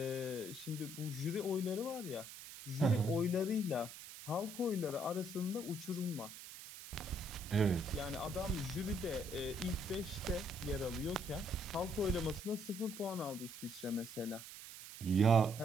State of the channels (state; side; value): noise; right; hiss, 13 dB below the sound